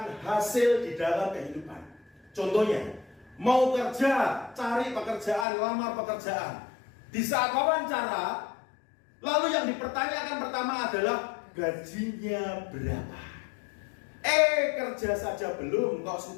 hasil di dalam kehidupan. Contohnya, mau kerja, cari pekerjaan, lamar pekerjaan. Di saat wawancara, lalu yang dipertanyakan pertama adalah gajinya berapa. Kerja saja belum, kok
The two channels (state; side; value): drops out; right; at 5.5 s